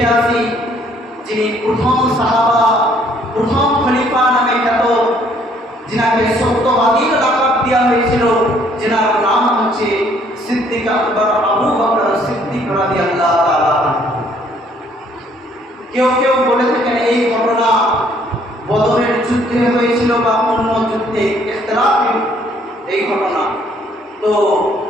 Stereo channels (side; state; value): both; normal; correlation 0.63